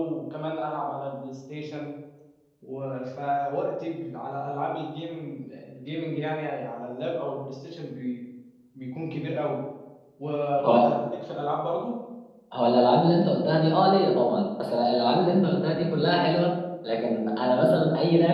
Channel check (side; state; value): both; identical; correlation 1.00